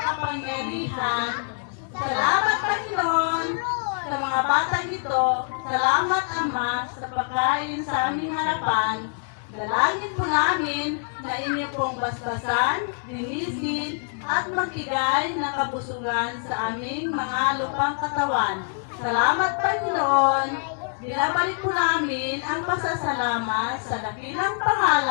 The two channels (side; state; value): right; silent; 62 dB below the other